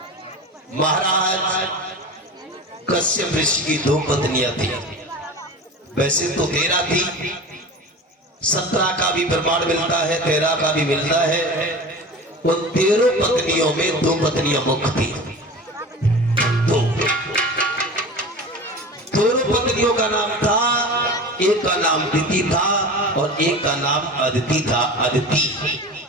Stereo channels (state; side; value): normal; both; correlation 0.33